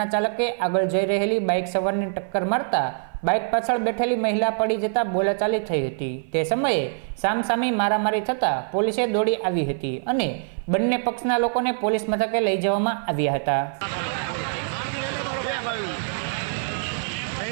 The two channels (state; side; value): silent; left; 56 dB below the other